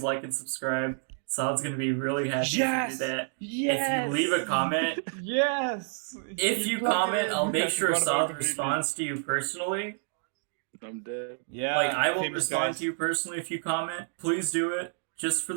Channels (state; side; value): silent; left; digital silence